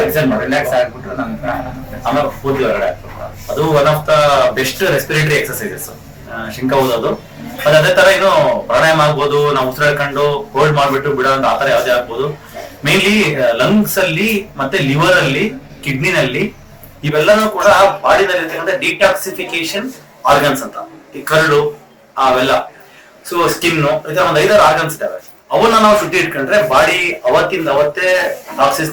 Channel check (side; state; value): both; identical; correlation 1.00